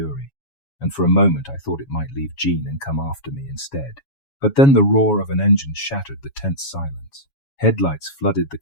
and for a moment I thought it might leave Jean and come after me instead. But then the roar of an engine shattered the tense silence. Headlights flooded the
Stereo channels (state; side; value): late; right; 7.2 ms